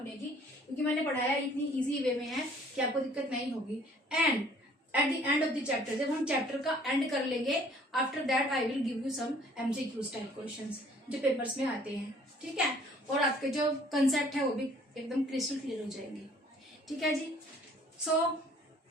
की, क्योंकि मैंने पढ़ाया इतनी ईजी वे में है कि आपको दिक्कत नहीं होगी। And at the end of the chapter, जब हम चैप्टर का एंड कर लेंगे, after that I will give you some MCQ type questions जो पेपर्स में आते हैं। ठीक है। और आपके जो कंसेप्ट है वो भी एकदम क्रिस्टल क्लियर हो जाएंगे। ठीक है जी। So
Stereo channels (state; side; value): normal; both; correlation 0.56